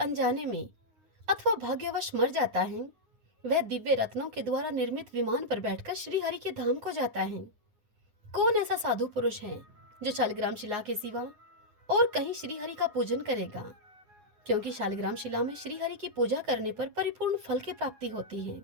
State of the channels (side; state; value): left; late; 9.7 ms